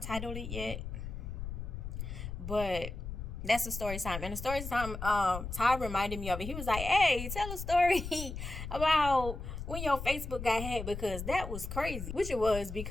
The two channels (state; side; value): noise; left; rumble, 7 dB below the sound